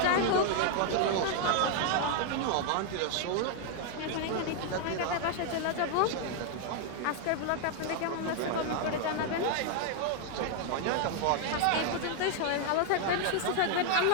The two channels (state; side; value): different; both; correlation 0.00